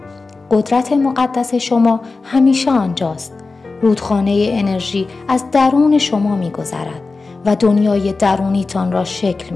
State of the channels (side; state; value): right; quieter; 3.9 dB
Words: قدرت مقدس شما همیشه آنجاست. رودخانه انرژی از درون شما می‌گذرد و دنیای درونیتان را شکل